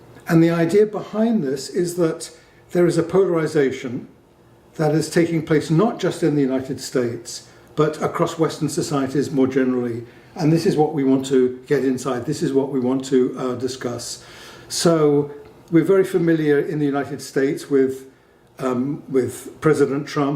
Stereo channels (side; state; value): both; identical; correlation 1.00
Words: And the idea behind this is that there is a polarization that is taking place not just in the United States, but across Western societies more generally. And this is what we want to get inside. This is what we want to discuss. So we're very familiar in the United States with President